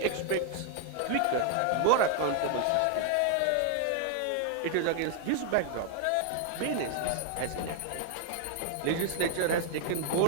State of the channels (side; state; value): both; different; correlation 0.00